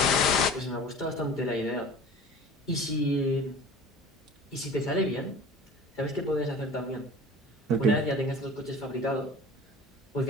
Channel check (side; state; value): both; normal; correlation 0.41